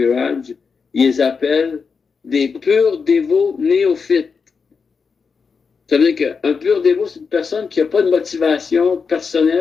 ils les appellent des purs dévots néophytes. Ça veut dire qu'un pur dévot, c'est une personne qui n'a pas de motivation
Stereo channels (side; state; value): right; quieter; 5.4 dB